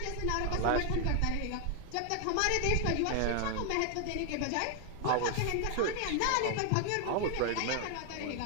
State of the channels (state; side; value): different; both; correlation 0.00